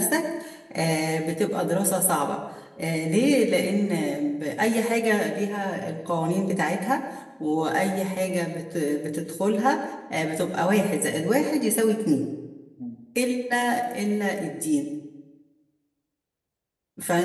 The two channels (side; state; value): both; identical; correlation 1.00